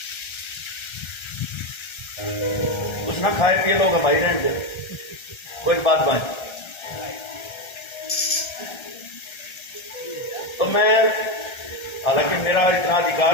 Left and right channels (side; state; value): right; late; 1.3 ms